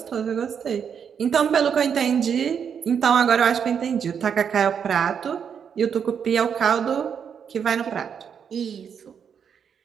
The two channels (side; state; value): left; quieter; 7.4 dB